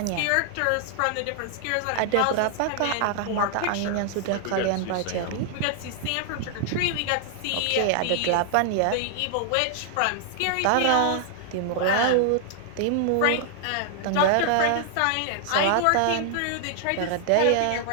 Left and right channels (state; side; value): different; both; correlation 0.00